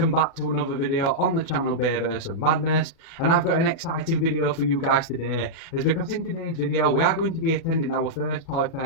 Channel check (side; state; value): right; late; 37 ms